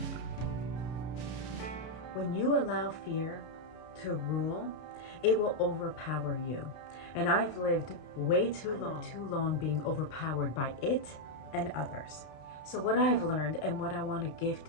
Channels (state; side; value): late; right; 32 ms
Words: When you allow fear to rule, it will overpower you. And I've lived way too long being overpowered by it and others. So what I've learned and what I want to